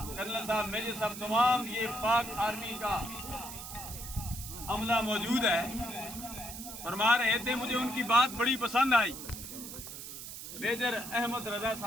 کرنل صاحب، میجر صاحب، تمام یہ پاک آرمی کا عملہ موجود ہے. فرما رہے تھے مجھے ان کی بات بڑی پسند آئی، میجر احمد رضا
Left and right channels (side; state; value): right; noise; hiss, 10 dB below the sound